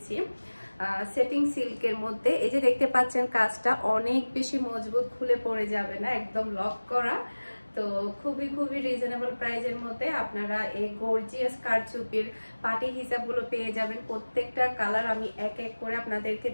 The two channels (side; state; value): both; inverted; correlation -1.00